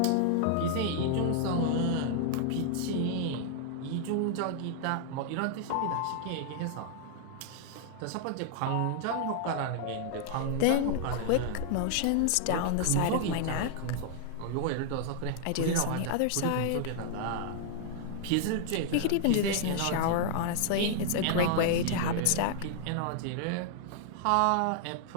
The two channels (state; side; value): different; both; correlation -0.01